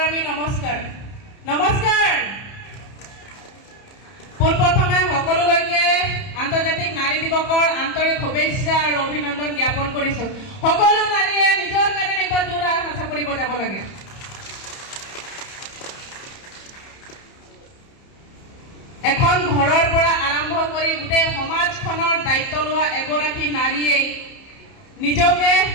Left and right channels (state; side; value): late; right; 30 ms